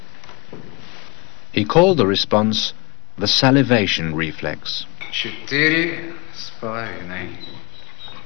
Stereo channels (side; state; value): right; quieter; 28.2 dB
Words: He called the response the salivation reflex. 4,5.